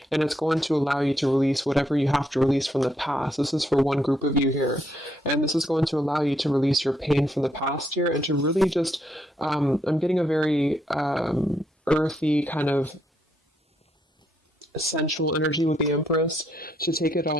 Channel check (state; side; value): normal; both; correlation 0.75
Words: and it's going to allow you to release whatever you have to release from the past. This is for one group of you here, and this is going to allow you to release your pain from the past here and to really just, I'm getting a very earthy kind of sensual energy with the Empress, to take it